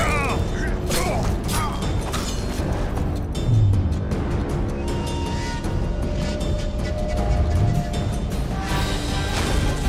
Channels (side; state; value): both; identical; correlation 1.00